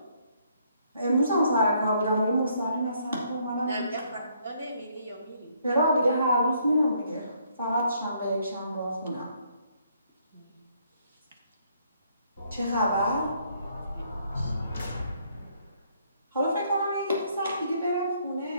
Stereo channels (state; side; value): inverted; both; correlation -0.68